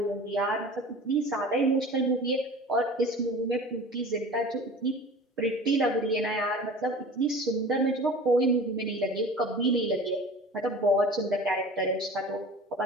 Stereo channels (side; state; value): both; normal; correlation 0.39